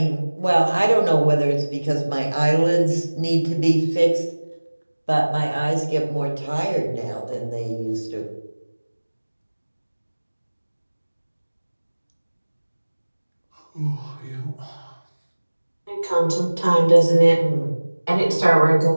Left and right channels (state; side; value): inverted; both; correlation -1.00